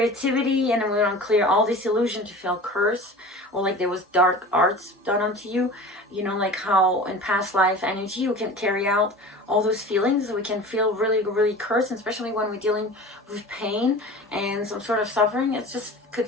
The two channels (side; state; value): both; normal; correlation 0.37